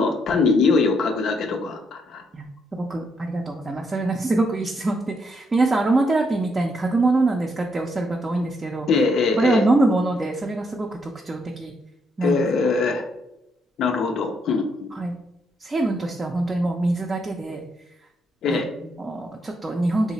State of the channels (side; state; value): both; normal; correlation 0.76